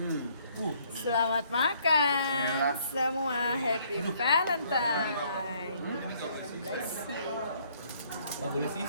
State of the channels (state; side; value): inverted; both; correlation -0.65